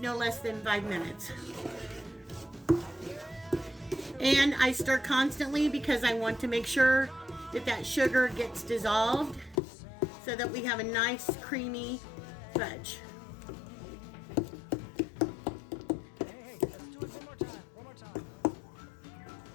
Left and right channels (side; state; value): right; drops out; at 9.6 s